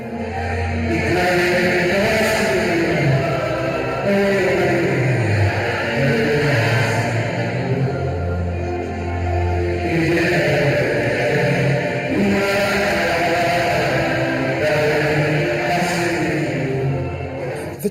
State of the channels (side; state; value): both; identical; correlation 1.00